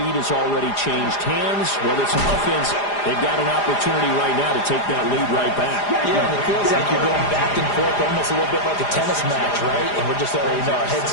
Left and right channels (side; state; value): right; late; 4.9 ms